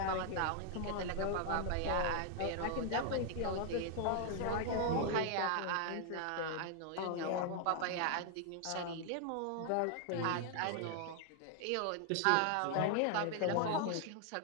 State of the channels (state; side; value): different; both; correlation 0.00